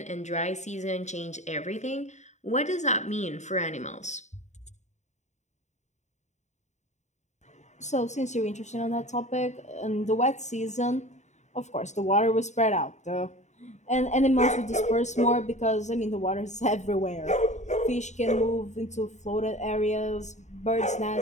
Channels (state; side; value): late; right; 0.34 ms